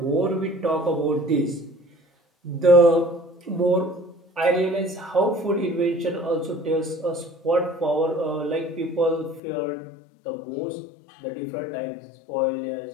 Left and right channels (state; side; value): drops out; right; at 9.4 s